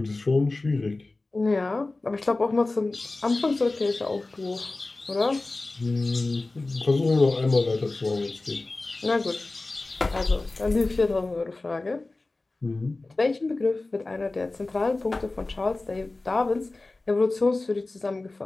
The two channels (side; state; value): right; quieter; 3.2 dB